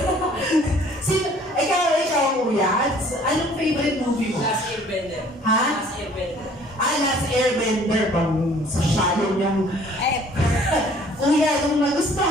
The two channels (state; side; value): normal; both; correlation 0.55